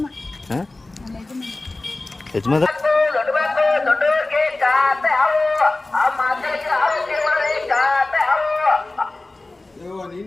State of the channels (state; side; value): quieter; right; 3.0 dB